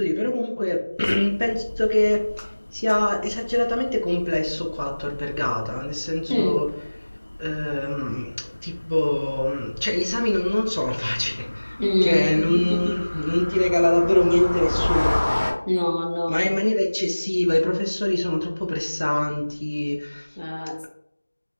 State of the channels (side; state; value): both; inverted; correlation -1.00